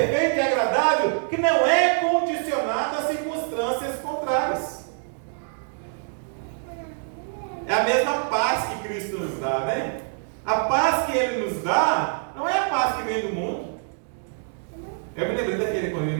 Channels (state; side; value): silent; left; 62 dB below the other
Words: e agradável, que não é condicionado a circunstâncias contrárias. É a mesma paz que Cristo nos dá, né? A paz que Ele nos dá não é a paz que vem do mundo. Eu me lembrei daquele comigo,